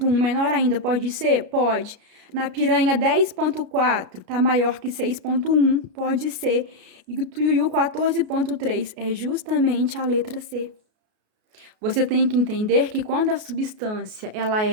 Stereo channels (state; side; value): late; left; 33 ms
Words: menor ainda, pode ser? Pode. Na piranha 10,4, tá maior que 6,1, pode ser. E o tuiuiu 14,3 é justamente a letra C. Você tem que entender que quando a substância ela